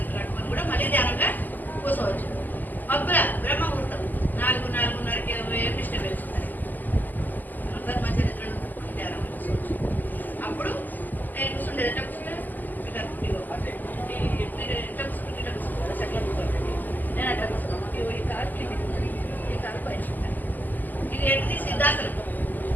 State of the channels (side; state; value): right; late; 0.085 ms